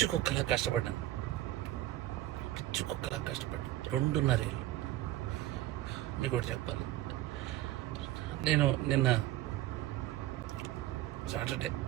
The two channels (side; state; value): left; quieter; 14.9 dB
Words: కష్టపడ్డాను. 2.5 ఏళ్ళు. మీకు ఒకటి చెప్పాలి, నేను నిన్న సాటర్డే